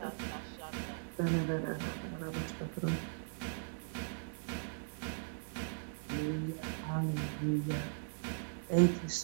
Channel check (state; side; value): silent; left; 52 dB below the other